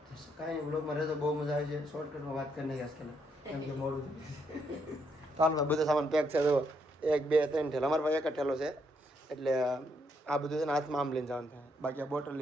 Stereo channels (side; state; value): both; normal; correlation 0.75